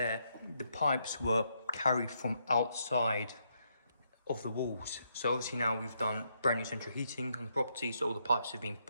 the pipes were carried from outside of the walls. So obviously now we've done brand new central heating on the property, so all the pipes have been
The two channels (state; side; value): inverted; both; correlation -0.77